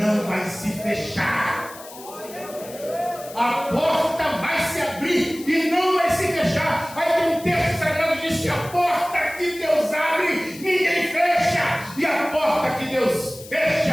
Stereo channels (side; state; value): left; noise; hiss, 17 dB below the sound